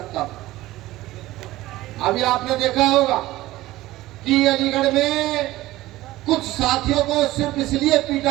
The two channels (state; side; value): quieter; left; 17.0 dB